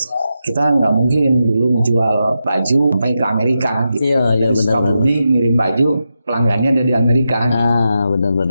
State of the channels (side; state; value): both; inverted; correlation -0.88